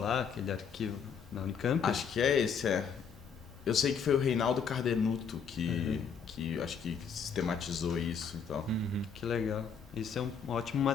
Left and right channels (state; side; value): quieter; right; 6.5 dB